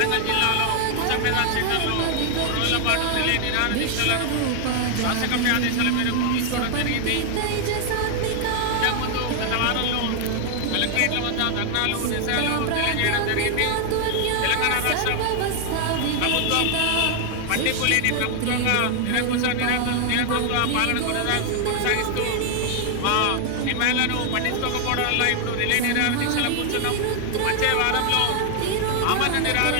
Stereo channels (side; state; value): both; different; correlation 0.00